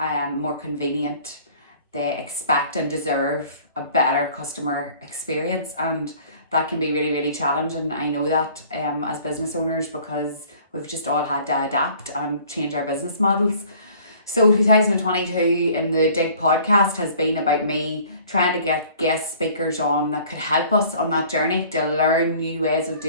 convenient. They expect and deserve a better customer experience, and that can be really, really challenging. I know that as business owners, because we've just all had to adapt and change our business models. So 2022 in the Digg Podcast has been about me trying to get guest speakers on that could help us on that journey to learn new ways of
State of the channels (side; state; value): both; inverted; correlation -0.52